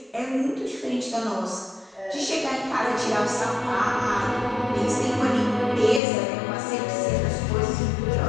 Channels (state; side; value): drops out; right; at 6.0 s